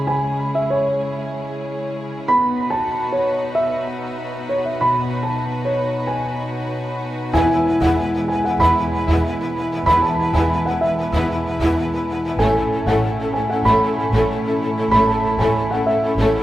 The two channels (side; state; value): both; normal; correlation 0.92